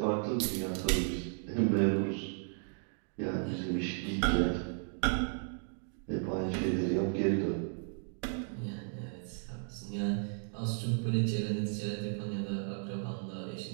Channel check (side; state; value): left; silent; 55 dB below the other